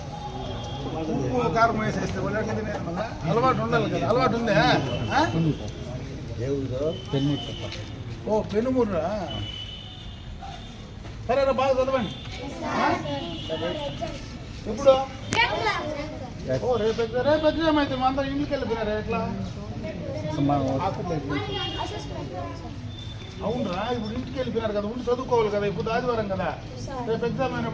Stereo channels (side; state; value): both; identical; correlation 1.00